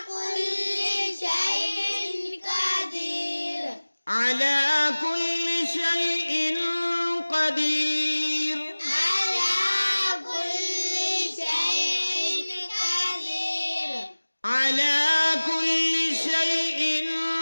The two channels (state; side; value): inverted; both; correlation -1.00